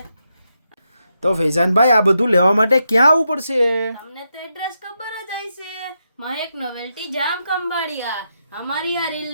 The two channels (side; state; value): both; inverted; correlation -0.84